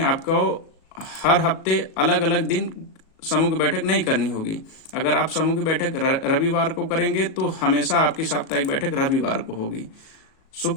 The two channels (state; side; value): late; right; 37 ms